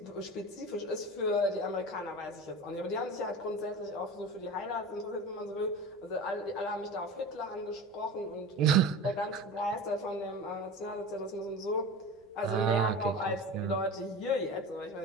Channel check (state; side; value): normal; both; correlation 0.32